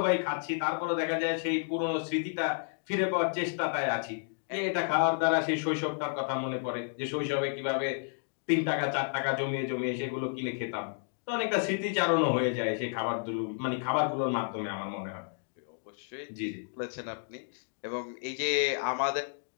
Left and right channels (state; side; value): silent; right; digital silence